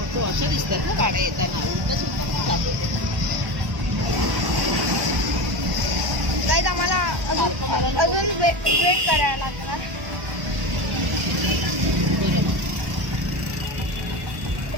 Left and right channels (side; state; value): left; late; 1.1 ms